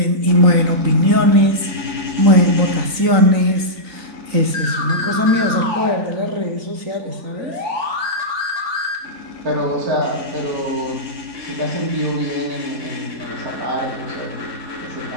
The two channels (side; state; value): left; late; 3.9 ms